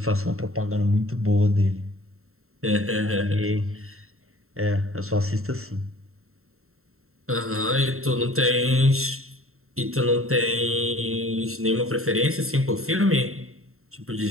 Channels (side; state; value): left; late; 0.62 ms